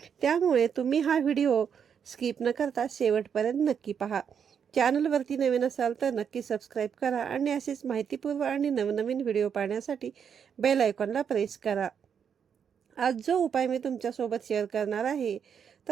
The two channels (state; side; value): quieter; left; 7.5 dB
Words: त्यामुळे तुम्ही हा व्हिडिओ स्किप न करता शेवटपर्यंत नक्की पहा. चॅनलवरती नवीन असाल तर नक्की सबस्क्राईब करा आणि असेच माहितीपूर्व आणि नवनवीन व्हिडिओ पाहण्यासाठी बेल आयकॉनला प्रेस करा. आज जो उपाय मी तुमच्यासोबत शेअर करणार आहे